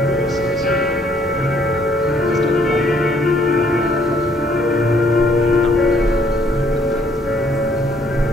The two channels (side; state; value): both; normal; correlation 0.65